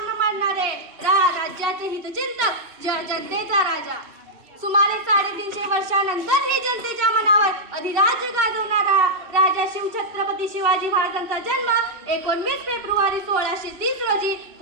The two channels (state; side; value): late; left; 2.7 ms